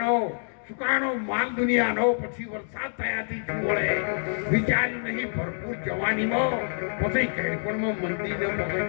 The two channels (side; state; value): right; silent; digital silence